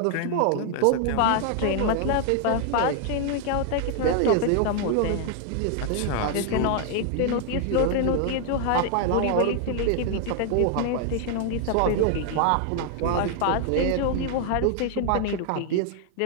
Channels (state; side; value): different; both; correlation 0.00